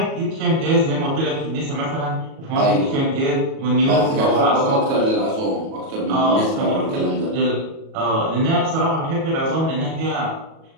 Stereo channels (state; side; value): late; left; 37 ms